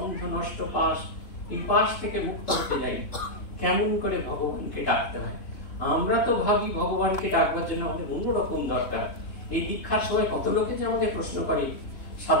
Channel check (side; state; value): right; late; 3.4 ms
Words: নষ্ট পাশ, এই পাশ থেকে মুক্ত হতে যাই। কেমন করে ভগবানকে ডাকতে হয়? আমরা তো ভাবি ভগবানকে ডাকবার জন্য আমাদের অন্যরকম দরকার। এই দীক্ষার সময় কত লোকে যে আমাদের প্রশ্ন করে,